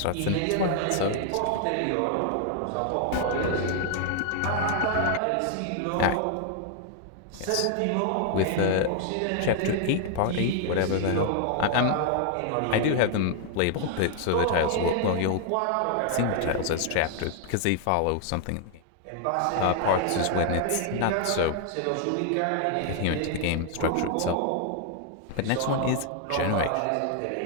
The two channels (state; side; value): different; both; correlation 0.00